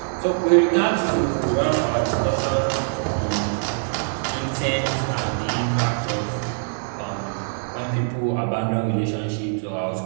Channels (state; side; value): silent; left; digital silence